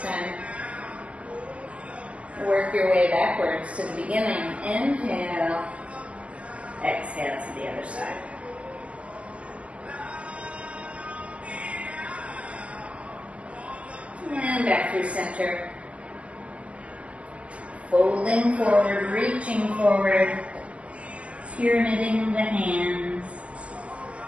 time. Work your way backwards to the beginning. Inhale. Exhale to the other side. And back through center. Folding forward, reaching forward, pyramiding the hands.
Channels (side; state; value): left; late; 0.062 ms